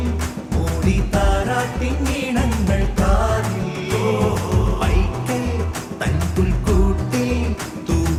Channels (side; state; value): both; identical; correlation 1.00